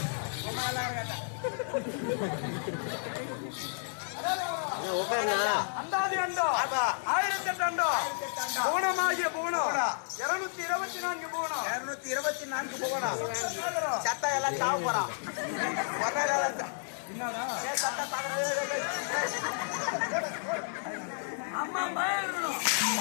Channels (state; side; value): silent; right; 57 dB below the other